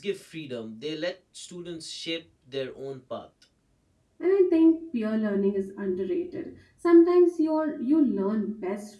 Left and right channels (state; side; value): identical; both; correlation 1.00